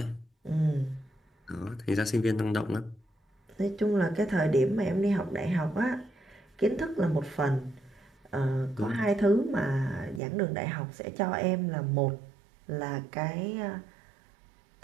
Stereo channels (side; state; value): left; drops out; at 10.2 s